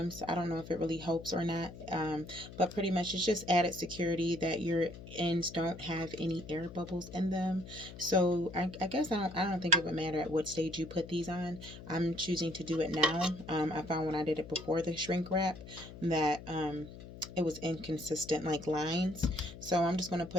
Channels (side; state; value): left; noise; hum, 14 dB below the sound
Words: I don't know if it really helps or not, but pretty much it's just added security that your ends don't have any air bubbles in them. So I guess I don't think it would matter at what stage you put these on. I'm choosing to do it now. I found when I did it before the shrink wrap that it was inconsistent like lines. So I'm just going to